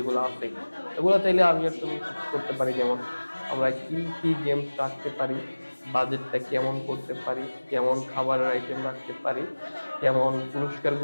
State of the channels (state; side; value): inverted; both; correlation -1.00